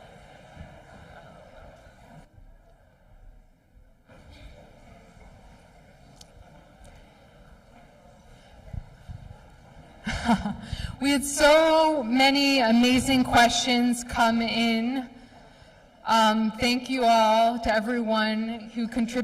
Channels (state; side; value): identical; both; correlation 1.00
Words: We had so many amazing questions come in. Thank you all to everyone who